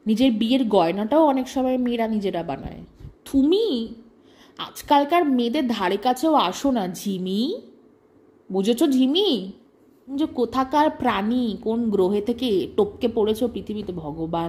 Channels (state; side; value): identical; both; correlation 1.00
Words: নিজের বিয়ের গয়নাটাও অনেক সময় মেয়েরা নিজেরা বানায়। তুমি আজকালকার মেয়েদের ধারে কাছেও আসো না ঝিমি, বুঝেছো ঝিমি? যে কোথাকার প্রাণী, কোন গ্রহে থেকে টপকে পড়েছো পৃথিবীতে